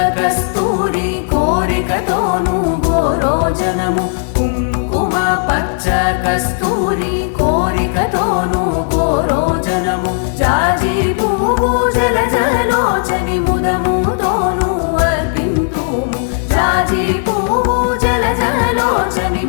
कस्तूरी कोरिकतोनु गोरोजनमु, कुङ्कुम पच्च कस्तूरी कोरिकतोनु गोरोजनमु, जाजि पुव्वु जलजलोचनि मुदमुतोनु अर्पिन्तुमु, जाजि पुव्वु जलजलोचनि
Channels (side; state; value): right; silent; digital silence